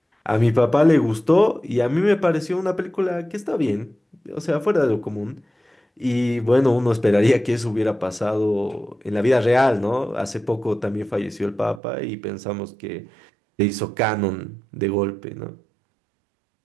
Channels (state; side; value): drops out; left; at 11.8 s